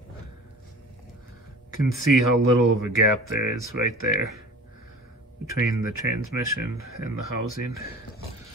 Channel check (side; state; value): both; normal; correlation 0.41